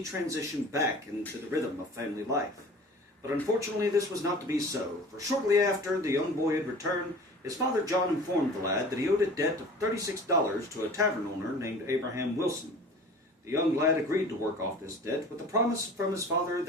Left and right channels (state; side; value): normal; both; correlation 0.42